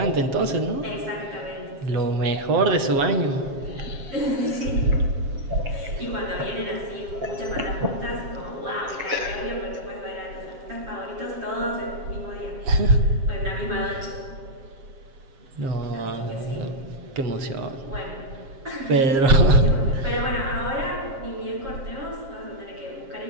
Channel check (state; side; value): late; left; 7.5 ms